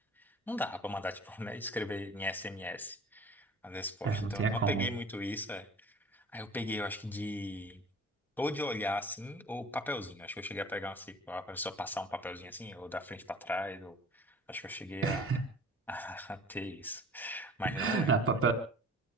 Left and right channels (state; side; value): normal; both; correlation 0.46